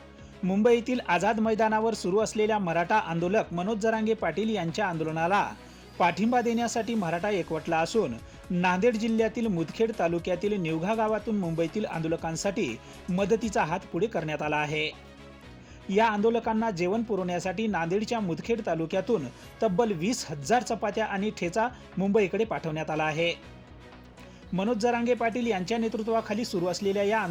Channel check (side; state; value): both; identical; correlation 1.00